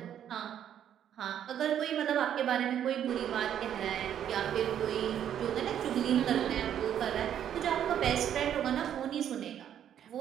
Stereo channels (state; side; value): quieter; left; 9.9 dB